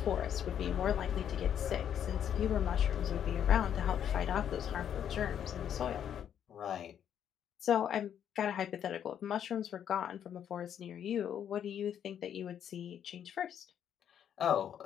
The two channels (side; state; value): right; quieter; 9.3 dB